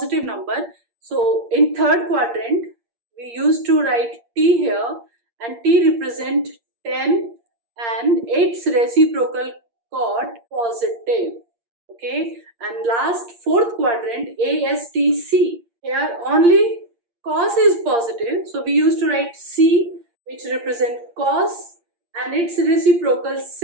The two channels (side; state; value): left; late; 8.6 ms